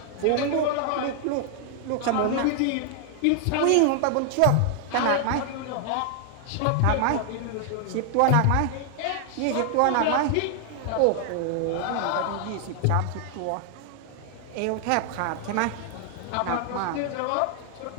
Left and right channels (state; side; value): different; both; correlation 0.00